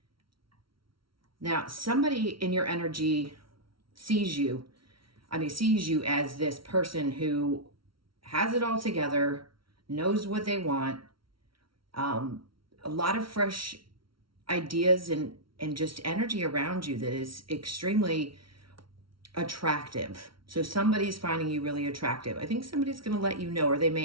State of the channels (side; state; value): left; late; 0.74 ms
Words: Now, somebody in your energy sees you as this person who has it all together, knows what they want, a lot of fresh ideas and just energy around you that is extremely attractive. So somebody's finding you really attractive. I think somebody's going to let you know, or they